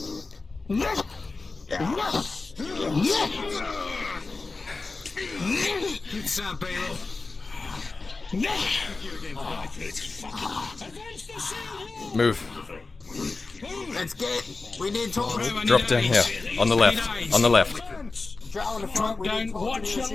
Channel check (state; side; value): quieter; right; 3.8 dB